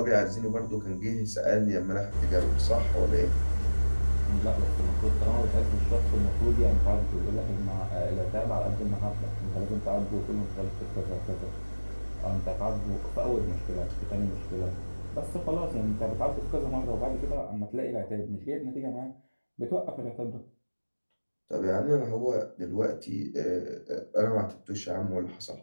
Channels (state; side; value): inverted; both; correlation -1.00